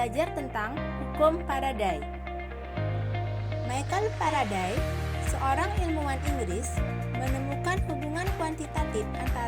tentang hukum Faraday. Michael Faraday, seorang ilmuwan Inggris, menemukan hubungan kuantitatif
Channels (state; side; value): identical; both; correlation 1.00